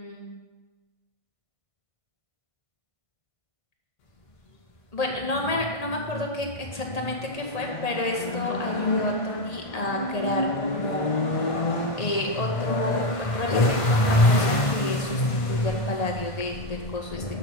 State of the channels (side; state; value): right; late; 1.5 ms